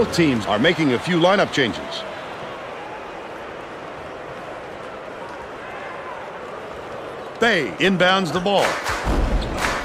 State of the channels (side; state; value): both; identical; correlation 1.00